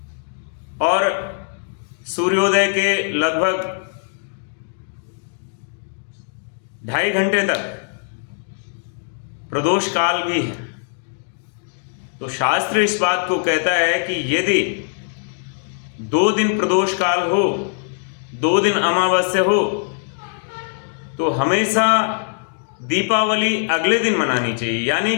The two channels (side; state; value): right; silent; digital silence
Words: और सूर्योदय के लगभग 2.5 घंटे तक प्रदोष काल भी है। तो शास्त्र इस बात को कहता है कि यदि 2 दिन प्रदोष काल हो, 2 दिन अमावस्या हो, तो हमेशा दीपावली अगले दिन मनानी चाहिए। यानी